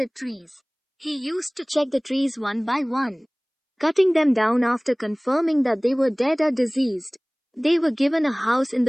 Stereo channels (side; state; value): both; identical; correlation 1.00